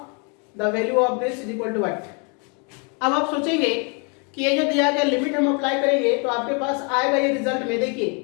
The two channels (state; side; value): quieter; right; 35.6 dB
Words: the value of this is equal to what. अब आप सोचेंगे कि ये जो दिया गया लिमिट हम अप्लाई करेंगे तो आपके पास आएगा ये रिजल्ट में, देखिए